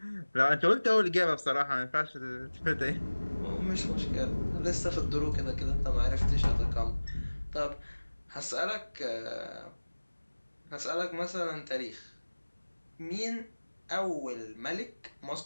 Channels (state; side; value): inverted; both; correlation -1.00